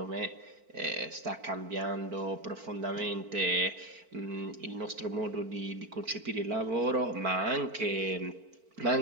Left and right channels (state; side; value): late; left; 4.5 ms